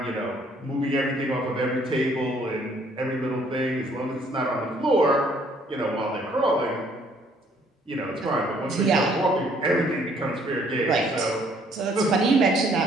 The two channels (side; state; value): both; normal; correlation 0.63